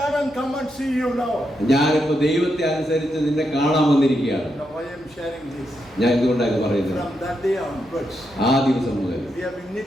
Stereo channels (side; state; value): right; noise; hum, 27 dB below the sound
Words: and come and see you now. ഞാനിപ്പോ ദൈവത്തെ അനുസരിച്ച് നിന്നെ കാണാൻ വന്നിരിക്കുകയാണ്. Now I am sharing this. ഞാൻ എന്തുകൊണ്ടാണ് പറയുന്നത്? From that day onwards, ആ ദിവസം മുതൽ we have been